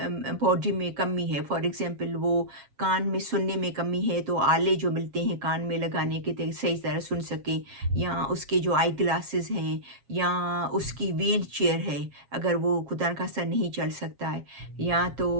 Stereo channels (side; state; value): left; late; 7.4 ms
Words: बॉडी में कमी है, फॉर एग्जांपल वो कान में सुनने में कमी है, तो आले जो मिलते हैं कान में लगाने के, सही तरह सुन सकें, या उसके जो आई ग्लासेस हैं, या उसकी व्हील चेयर है, अगर वो खुदा न खास्ता नहीं चल सकता है, या तो